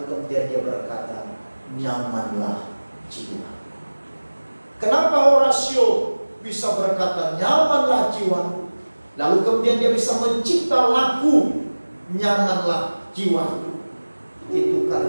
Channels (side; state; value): both; inverted; correlation -1.00